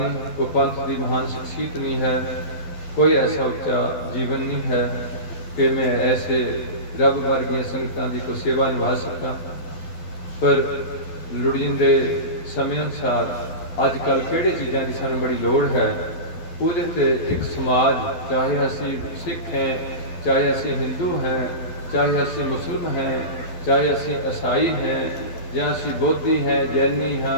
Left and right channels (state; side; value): late; right; 12 ms